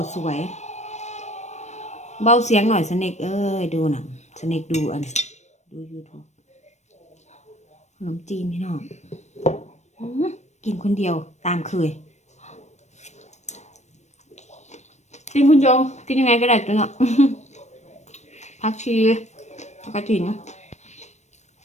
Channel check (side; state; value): right; late; 0.33 ms